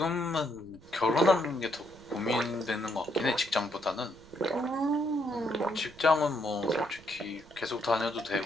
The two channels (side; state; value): right; noise; rumble, 24 dB below the sound